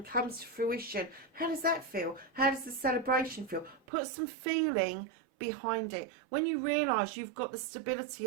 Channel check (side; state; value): left; drops out; at 3.8 s